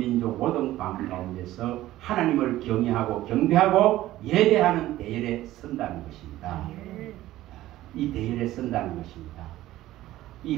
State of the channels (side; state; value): left; quieter; 15.2 dB